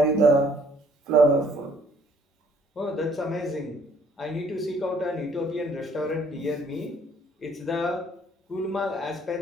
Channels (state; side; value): normal; both; correlation 0.61